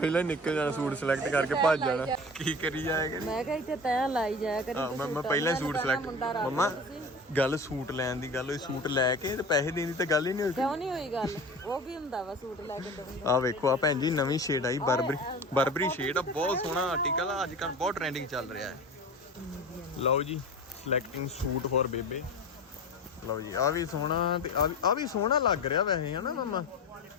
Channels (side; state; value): both; normal; correlation 0.33